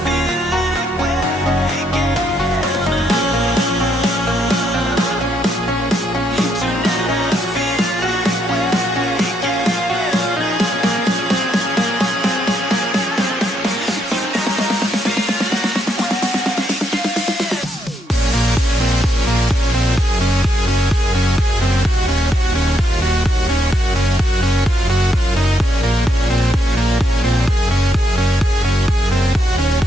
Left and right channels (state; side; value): normal; both; correlation 0.76